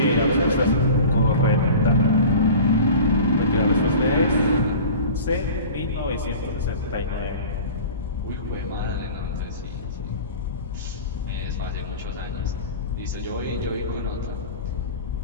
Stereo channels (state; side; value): inverted; both; correlation -0.39